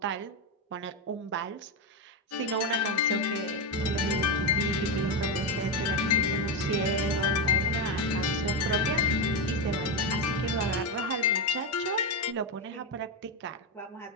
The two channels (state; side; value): normal; both; correlation 0.09